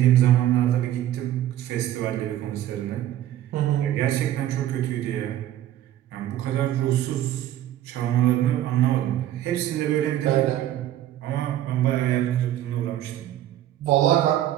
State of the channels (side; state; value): left; quieter; 12.6 dB